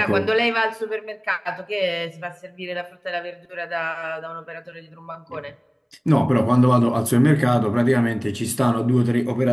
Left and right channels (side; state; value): both; identical; correlation 1.00